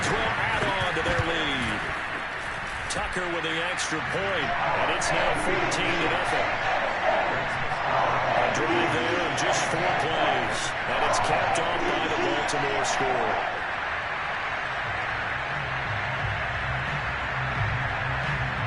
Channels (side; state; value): both; identical; correlation 1.00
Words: will add on to their lead. Tucker with the extra point, and it's now 14-0. A drive there in just 4 plays, and it's capped off by the Baltimore score.